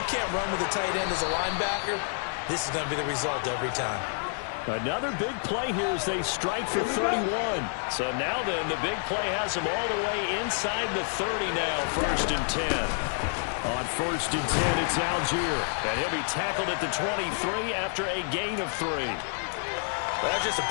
can't run with a tight end as a linebacker, this is going to be the result every time. Another big play here as they strike for 31. So now then, the big play has them all the way inside the 30 now, 1st and 10. On 1st and 10, it's Algier. And he'll be tackled at the 23 after a gain of 3. Well, that's just a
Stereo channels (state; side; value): silent; right; 59 dB below the other